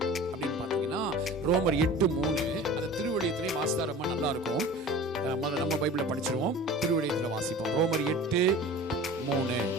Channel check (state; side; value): normal; both; correlation 0.39